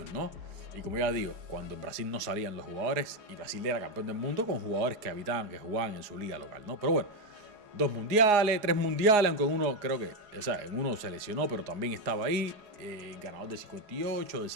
¿no? Y como ya digo, cuando en Brasil no salían los jugadores y Brasil era campeón del mundo con jugadores que habitaban, que jugaban en su liga local, ¿no? Pero bueno, 2 mundiales, 3 mundiales, aunque en uno creo que, o sea, en uno se lesionó, pero también estaba ahí, ganador de 58, de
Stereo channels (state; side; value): late; left; 4.8 ms